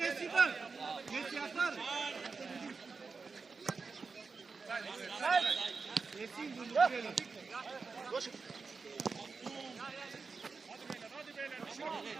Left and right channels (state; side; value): quieter; left; 4.6 dB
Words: die Ball. Jetzt die Abfahrt. Jetzt sind die Luftwelle.